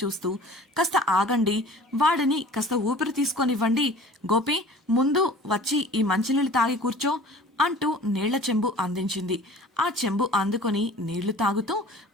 చూస్తూ, కాస్త ఆగండి, వాడిని కాస్త ఊపిరి తీసుకొనివ్వండి, గోపి ముందు వచ్చి ఈ మంచినీళ్ళు తాగి కూర్చో అంటూ నీళ్ల చెంబు అందించింది. ఆ చెంబు అందుకొని నీళ్లు తాగుతూ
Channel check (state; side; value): normal; both; correlation 0.44